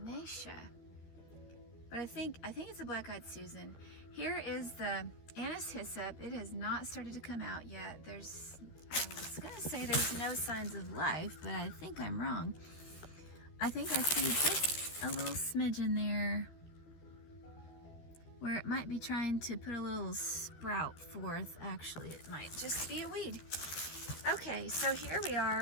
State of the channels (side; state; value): right; late; 13 ms